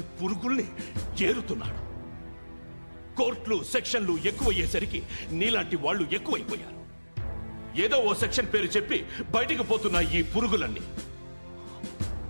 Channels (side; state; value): both; inverted; correlation -1.00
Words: పురుగుల్ని ఏరుతున్నాడు. కోర్టులు సెక్షన్లు ఎక్కువయ్యేసరికి నీలాంటి వాళ్ళు ఎక్కువైపోయారు. ఏదో ఓ సెక్షన్ పేరు చెప్పి బయటికి పోతున్న ఈ పురుగులన్నీ